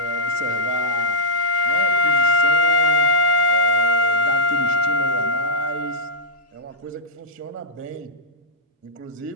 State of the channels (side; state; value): both; normal; correlation -0.11